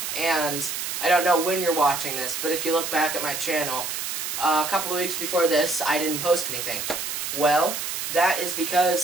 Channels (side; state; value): right; noise; hiss, 4 dB below the sound